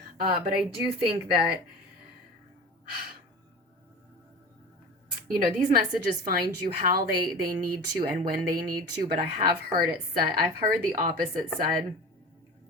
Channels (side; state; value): both; normal; correlation 0.34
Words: But I do think that, these messages find you how they need to and when they need to, but I have heard it said, I've heard the opposite said,